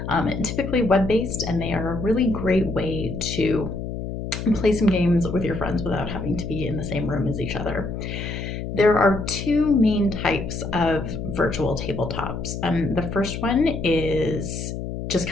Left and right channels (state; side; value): noise; left; hum, 6 dB below the sound